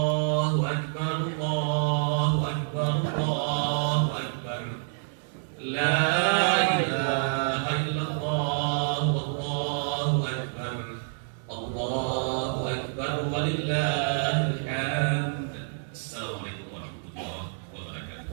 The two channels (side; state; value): left; silent; digital silence